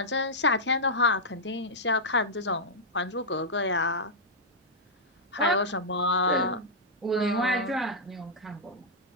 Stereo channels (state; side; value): normal; both; correlation -0.07